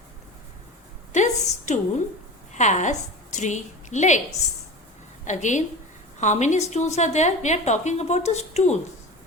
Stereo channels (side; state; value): both; normal; correlation 0.32